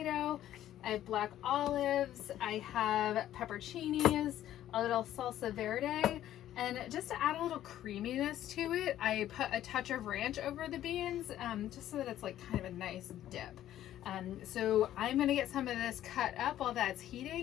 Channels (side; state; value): right; quieter; 12.4 dB